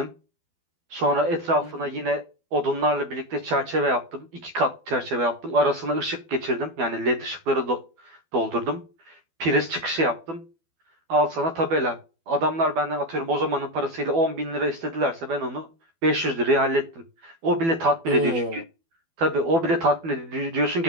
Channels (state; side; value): late; left; 12 ms